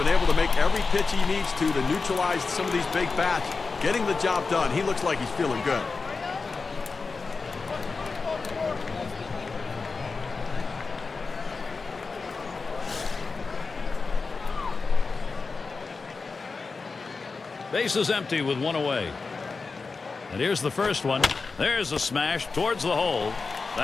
able to make every pitch he needs to neutralize some of these big bats, getting the job done. He looks like he's feeling good. Base is empty with 1 away. And here's the first one. There's a smash towards the hole.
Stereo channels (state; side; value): quieter; right; 4.3 dB